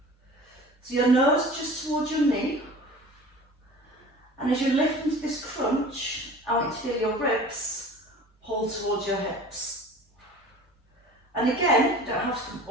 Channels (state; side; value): normal; both; correlation 0.41